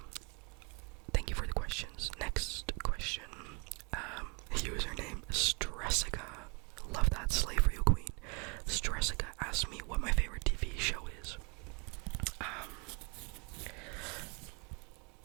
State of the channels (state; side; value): quieter; left; 32.8 dB